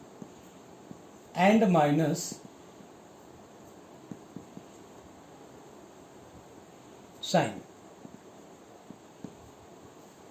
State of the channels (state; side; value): identical; both; correlation 1.00